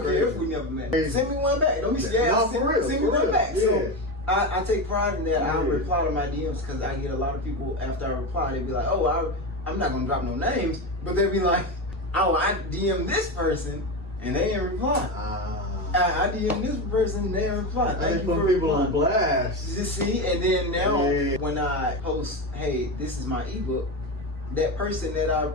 care if we never met. Send me one back. Don't be scared. Send me one back. So I take pride in that. I reply to my DMs because I get a lot of people after I reply. They be like, "Oh, I'm not gonna drop no names," but they be like, "Oh, I DM this person and they didn't reply." I DM this person, they didn't reply. Thank you for people on blast. You see, and then now when I post, "Hey, this is my ebook," that person that I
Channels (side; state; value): both; normal; correlation 0.18